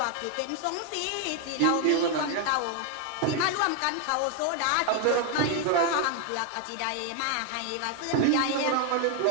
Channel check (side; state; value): both; different; correlation 0.00